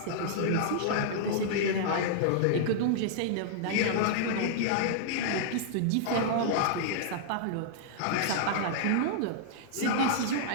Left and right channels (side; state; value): both; different; correlation -0.01